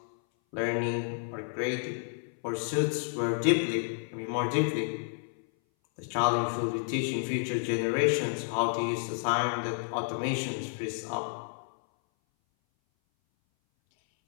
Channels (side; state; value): right; silent; 57 dB below the other